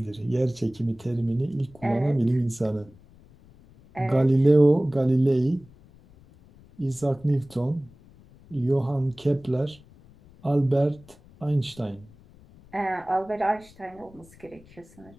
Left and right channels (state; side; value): noise; left; rumble, 25 dB below the sound